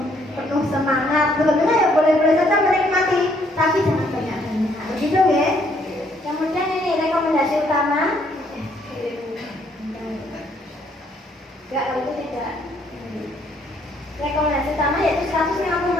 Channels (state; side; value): normal; both; correlation 0.67